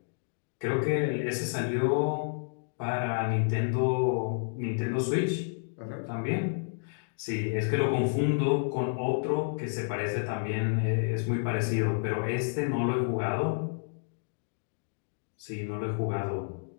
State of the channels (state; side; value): silent; right; digital silence